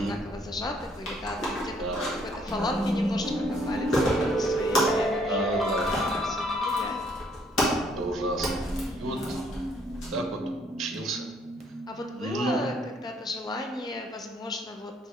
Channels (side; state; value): both; normal; correlation 0.66